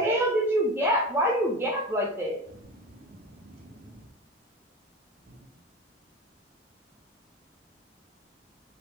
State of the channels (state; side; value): normal; both; correlation 0.28